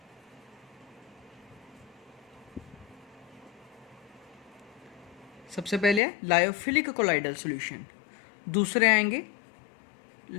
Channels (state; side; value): drops out; right; at 6.0 s